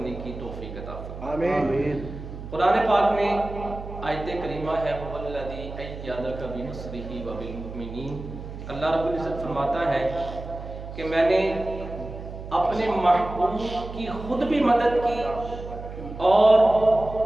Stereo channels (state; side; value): noise; right; hum, 11 dB below the sound